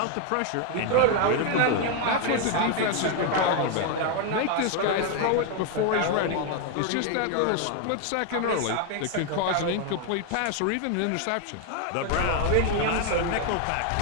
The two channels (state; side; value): different; both; correlation 0.01